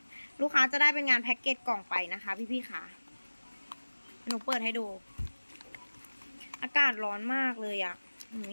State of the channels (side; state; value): both; inverted; correlation -1.00